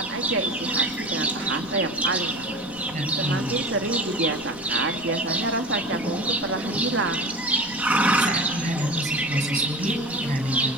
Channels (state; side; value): noise; left; rumble, 20 dB below the sound